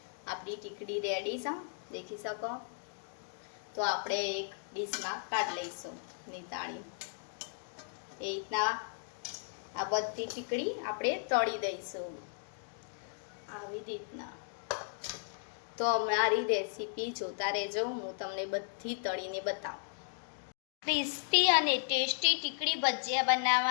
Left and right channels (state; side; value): silent; right; digital silence